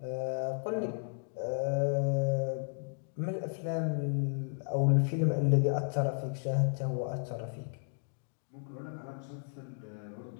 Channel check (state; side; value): silent; right; digital silence